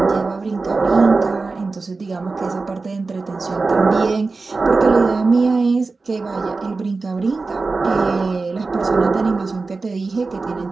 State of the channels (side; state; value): left; quieter; 3.9 dB